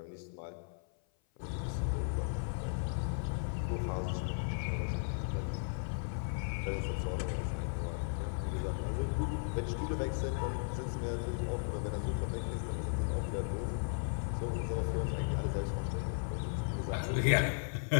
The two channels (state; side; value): silent; right; 54 dB below the other